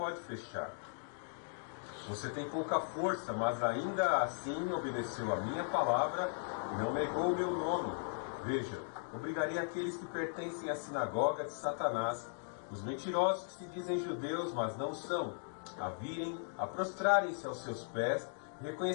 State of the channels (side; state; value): right; silent; digital silence